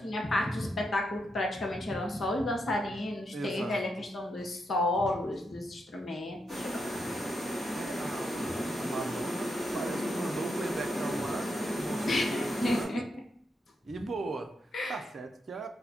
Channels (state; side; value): normal; both; correlation 0.82